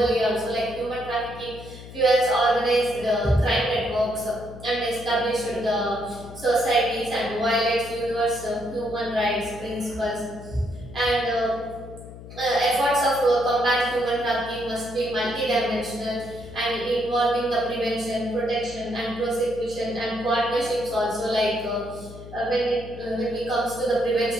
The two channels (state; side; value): noise; left; hum, 15 dB below the sound